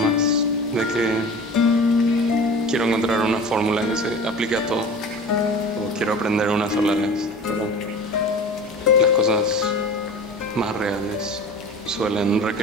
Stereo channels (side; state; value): both; normal; correlation 0.37